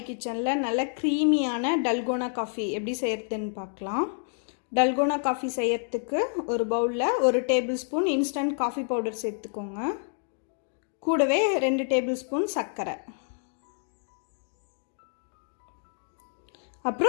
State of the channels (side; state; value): right; silent; 59 dB below the other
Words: நல்ல க்ரீமியான டல்கோனா காஃபி எப்படி செய்கிறதுன்னு பார்க்கலாம். டல்கோனா காஃபி செய்கிறதுக்கு ஒரு பவுலில் 1 table spoon instant coffee powder சேர்த்துக்கோங்க. கூடவே 2 டேபிள் ஸ்பூன் சர்க்கரை,